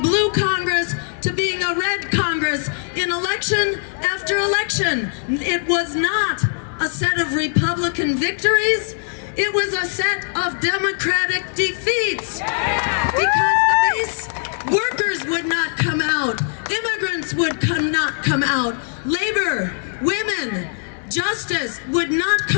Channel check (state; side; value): silent; right; 62 dB below the other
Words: Congress to being a red Congress in election after election. It was not a set of Republican victories. It was a set of Democratic defeats. Because the base workers would not come out. Immigrants would not come out. Labor, women, justice would not